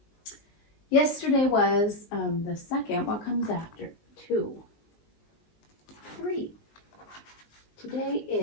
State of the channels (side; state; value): right; late; 19 ms